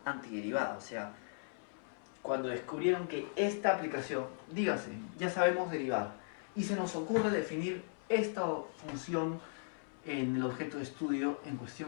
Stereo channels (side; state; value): right; silent; 53 dB below the other